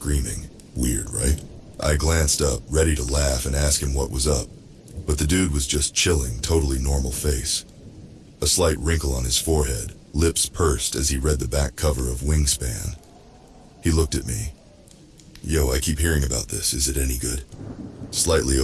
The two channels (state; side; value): identical; both; correlation 1.00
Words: Weird, right? I glanced up, ready to laugh and ask him what was up, but the dude was just chilling, totally normal face. A slight wrinkle on his forehead, lips pursed as he read the back cover of Wingspan. He looked at me. "Yo, I keep hearing about this. Is it any good?" "Slightly